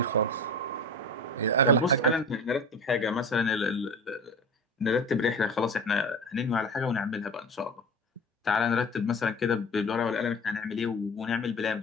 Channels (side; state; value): both; normal; correlation 0.33